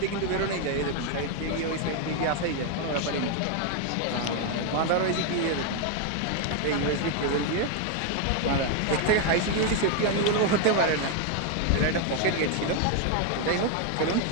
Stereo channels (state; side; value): different; both; correlation 0.01